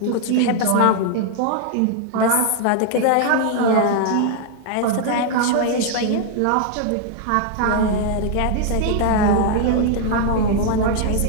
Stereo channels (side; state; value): both; different; correlation 0.00